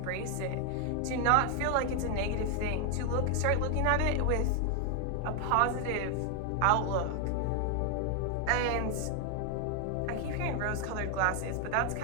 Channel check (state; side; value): different; both; correlation 0.00